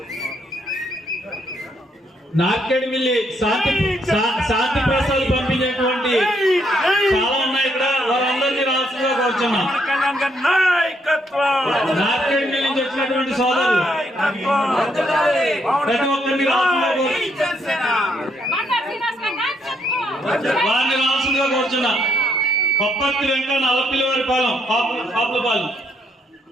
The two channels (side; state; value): both; normal; correlation 0.73